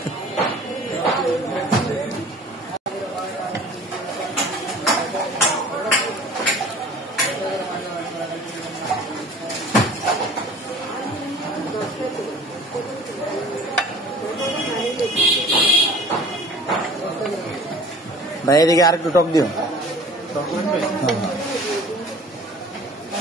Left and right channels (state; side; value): normal; both; correlation 0.46